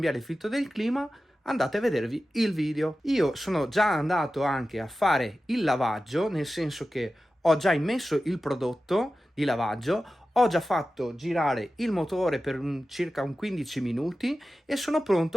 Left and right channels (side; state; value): both; normal; correlation 0.94